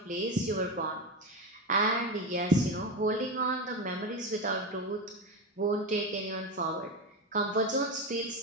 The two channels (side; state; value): both; normal; correlation 0.17